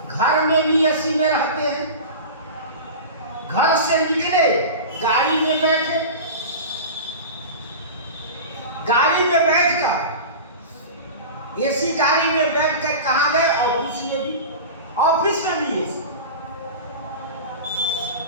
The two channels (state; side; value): inverted; both; correlation -0.30